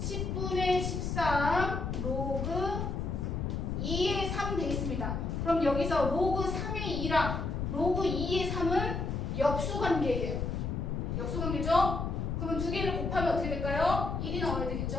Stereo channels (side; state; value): left; noise; rumble, 2 dB below the sound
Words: 13 로그 2의 3 되겠습니다. 그럼 여기서 로그 3의 2랑 로그 2의 3은 역수관계예요. 역수관계죠? 그러면 두 개를 곱하면 어떻게 될까요? 1이 나와야